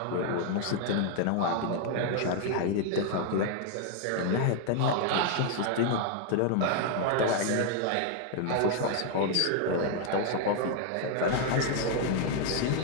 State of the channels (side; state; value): both; different; correlation 0.00